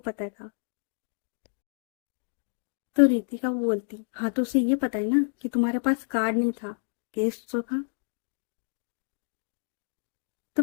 था। तो रितिका वो बोलती, हाँ तो उसे ये पता है ना कि तुम्हारे पास कार्ड नहीं था, कैश तो था। तो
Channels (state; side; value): silent; right; digital silence